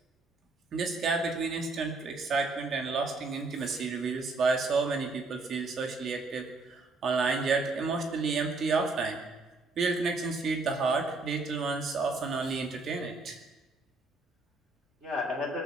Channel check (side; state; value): left; quieter; 3.6 dB